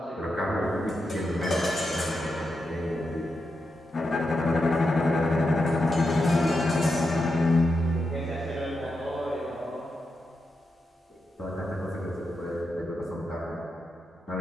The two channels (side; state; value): both; normal; correlation 0.87